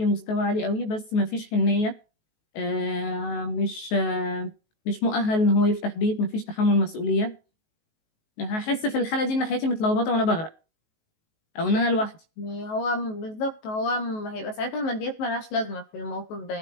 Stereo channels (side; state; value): right; late; 19 ms